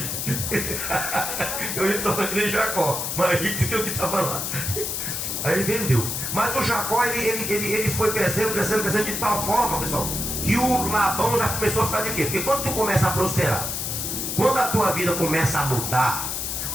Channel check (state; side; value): noise; left; hiss, 3 dB below the sound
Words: Eu ia tornar de Jacó, mais rico do que o que estava lá. Aí ele vendeu. Mas o Jacó, ele foi crescendo de tal forma, pessoal, que o Labão já começou a ficar de quê? Porque quando tu começa a prosperar, quando a tua vida começa a mudar,